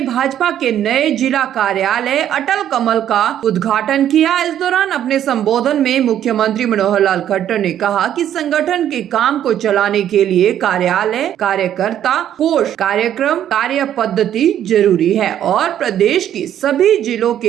भाजपा के नए जिला कार्यालय अटल कमल का उद्घाटन किया। इस दौरान अपने संबोधन में मुख्यमंत्री मनोहर लाल खट्टर ने कहा कि संगठन के काम को चलाने के लिए कार्यालय, कार्यकर्ता, कोष, कार्यक्रम, कार्य पद्धति जरूरी है और प्रदेश की सभी जिलों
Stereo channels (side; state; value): left; quieter; 10.7 dB